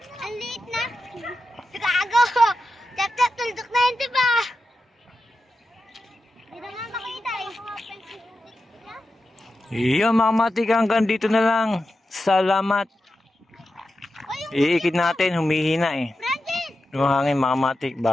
Ang liit na. Gago. Tap-tap, tuldok na yun, diba? Hindi na nga makita eh. Yan mga kamatik, hanggang dito na lang. Salamat. Iikit natin, humihina eh. Francis! Yung hangin mga kamatik,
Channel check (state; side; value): normal; both; correlation 0.90